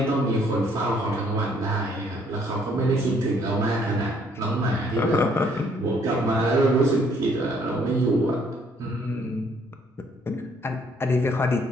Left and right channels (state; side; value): normal; both; correlation 0.64